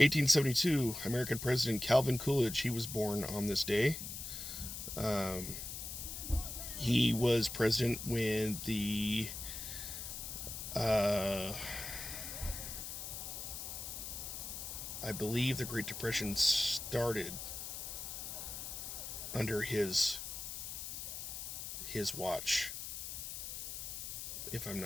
American President Calvin Coolidge, he was born on this day. He was president when the I believe the Great Depression started under his watch, if I'm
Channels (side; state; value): left; noise; hiss, 7 dB below the sound